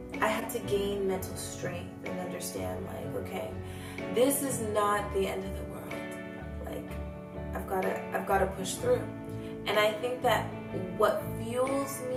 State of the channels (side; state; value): both; identical; correlation 1.00